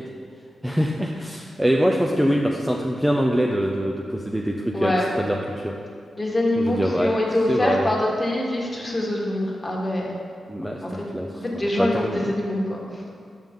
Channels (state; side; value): normal; both; correlation 0.93